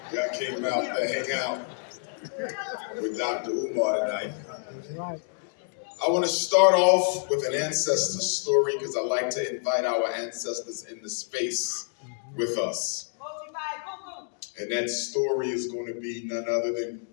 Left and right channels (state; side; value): silent; right; digital silence